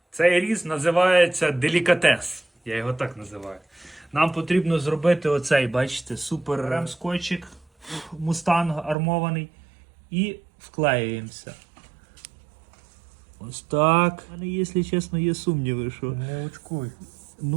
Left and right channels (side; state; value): left; drops out; at 9.0 s